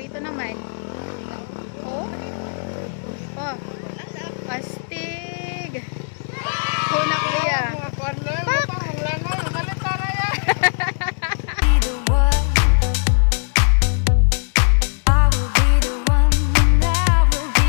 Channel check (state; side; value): silent; right; digital silence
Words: naman. Oh. Oh. Astig. Oh na kuya. Pak!